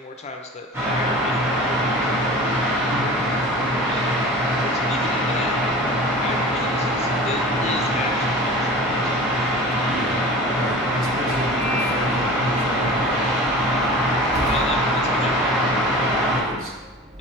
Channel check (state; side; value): normal; both; correlation 0.37